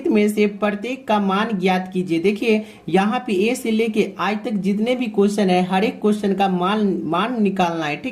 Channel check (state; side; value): identical; both; correlation 1.00